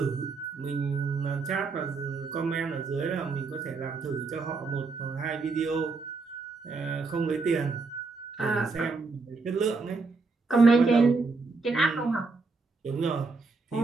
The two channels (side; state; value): left; quieter; 4.1 dB